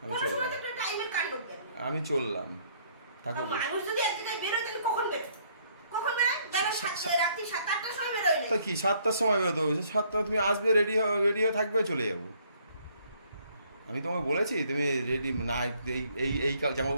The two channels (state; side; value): inverted; both; correlation -0.65